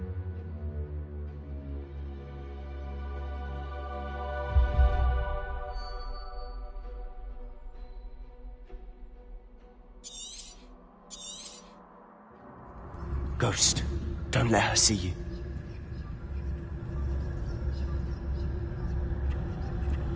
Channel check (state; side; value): identical; both; correlation 1.00